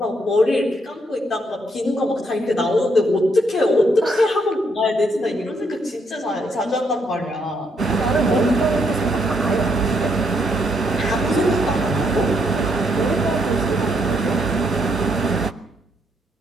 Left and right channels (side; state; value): both; normal; correlation 0.74